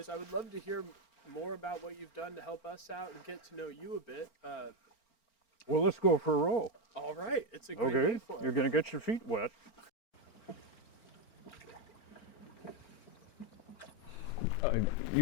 I would love to hear more about what you've done to help us out and get to know you a bit. Well, let's go for a row. All right, it's a great day for it. You're going to get your feet wet. I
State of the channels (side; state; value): right; late; 4.4 ms